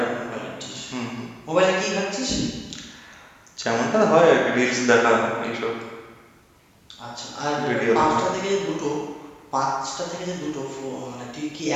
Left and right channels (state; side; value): identical; both; correlation 1.00